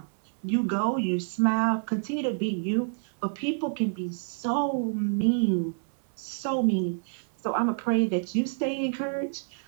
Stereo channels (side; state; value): left; silent; 59 dB below the other